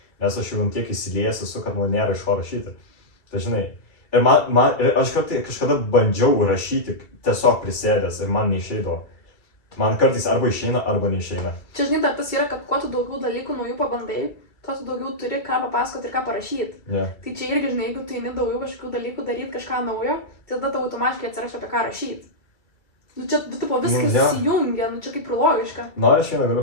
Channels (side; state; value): right; late; 2.3 ms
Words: nes aš jau tiek įsiliejęs esu, kad man nėra iš ko rašyti. Tai žinai, ir aš kažkada bandžiau rašyti tiesiog prisėdęs ir man neišeidavo. Man kartais arba išeina, arba neišeina. Čia, žinai, tas yra, kad kuo tu daugiau dalykų naujų pabandai, tuo tu daugiau turi ką papasakoti ir ką parašyti. Yeah. Tai čia irgi, žinai, jeigu tu eini daugiau kažkokių dalykų daryti, kažką naujo, tai tada tau automatiškai atsiras apie ką rašyti. Čia, viskas įsijungia, čia kaip ir logiška. Aš vieną